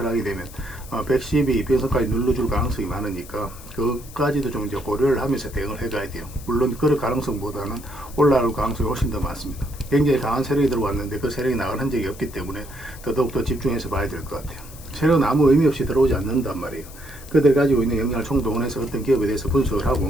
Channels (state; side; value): noise; left; hiss, 19 dB below the sound